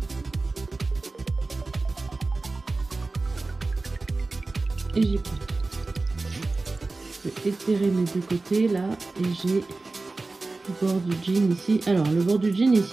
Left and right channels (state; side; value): quieter; left; 3.4 dB